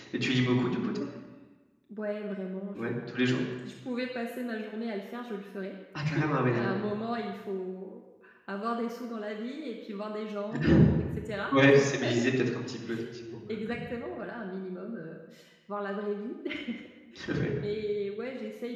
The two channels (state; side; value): identical; both; correlation 1.00